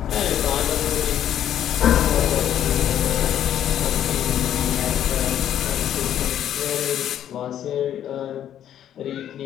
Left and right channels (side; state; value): right; quieter; 10.6 dB